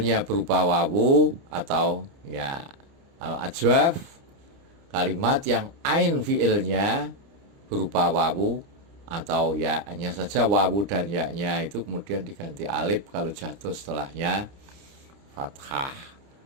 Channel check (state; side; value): late; left; 29 ms